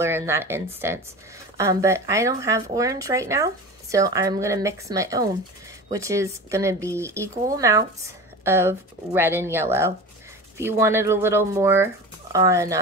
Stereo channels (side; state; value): both; normal; correlation 0.32